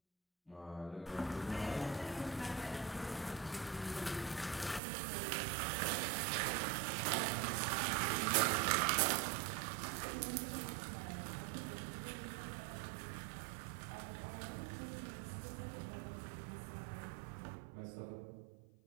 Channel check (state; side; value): drops out; left; at 4.8 s